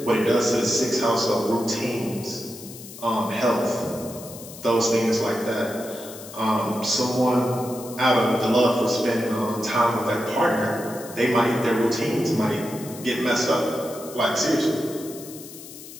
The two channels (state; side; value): noise; left; hiss, 15 dB below the sound